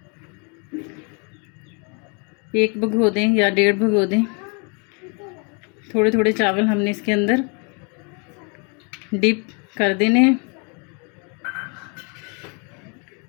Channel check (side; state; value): right; quieter; 35.2 dB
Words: 1 भिगो दें या 1.5 भिगो दें। थोड़े थोड़े चावल हमने इसके अंदर डिप कर देने हैं